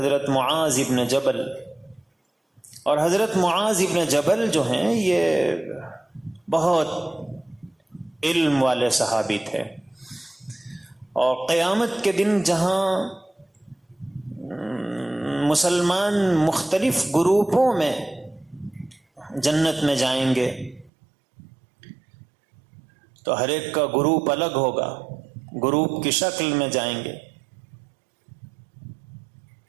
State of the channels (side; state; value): left; drops out; at 20.9 s